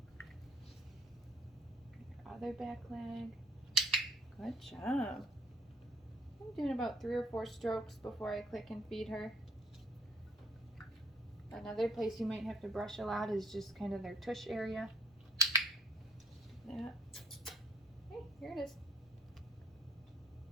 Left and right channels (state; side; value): normal; both; correlation 0.58